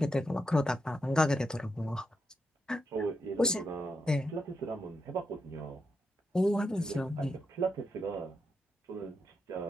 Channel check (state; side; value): normal; both; correlation 0.84